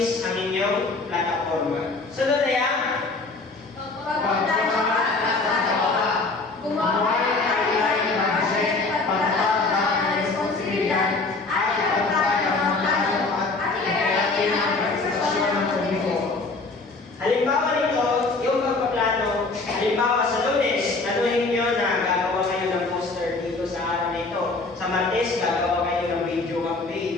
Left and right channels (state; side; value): quieter; right; 3.6 dB